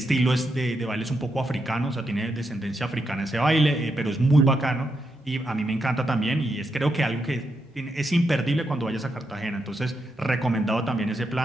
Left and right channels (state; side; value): normal; both; correlation 0.83